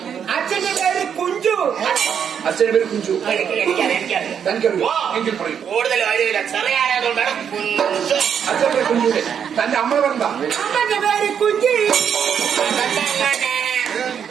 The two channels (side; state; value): left; quieter; 7.9 dB